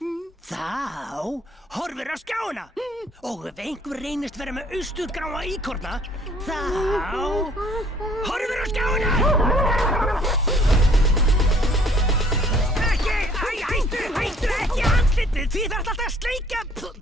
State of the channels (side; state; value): both; normal; correlation 0.58